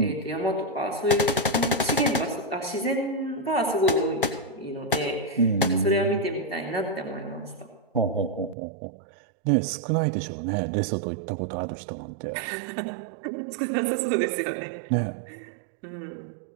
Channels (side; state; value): left; drops out; at 8.6 s